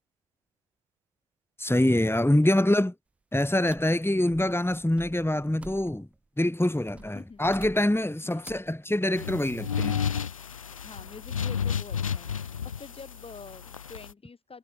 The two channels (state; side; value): normal; both; correlation 0.74